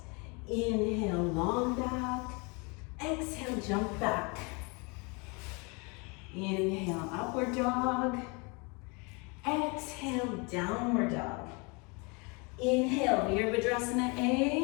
Inhale, long back. Exhale, jump back. Inhale, upward dog. Exhale, downward dog. Inhale, Virabhadrasana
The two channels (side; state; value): right; quieter; 30.6 dB